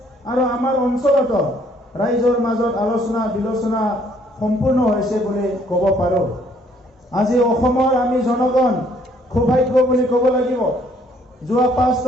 আৰু আমাৰ অঞ্চলত ৰাইজৰ মাজত আলোচনা বিলোচনা সম্পূৰ্ণ হৈছে বুলি ক'ব পাৰোঁ। আজি অসমৰ আমি জনগণ সৌভাগ্য বুলি ক'ব লাগিব। যোৱা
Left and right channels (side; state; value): both; normal; correlation 0.64